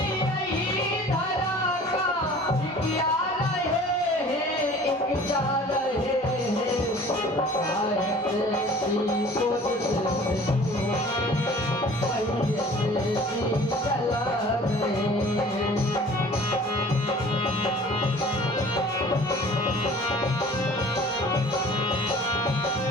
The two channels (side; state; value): both; normal; correlation 0.47